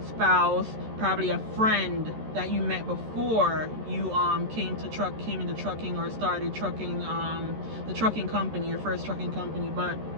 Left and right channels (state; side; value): late; left; 13 ms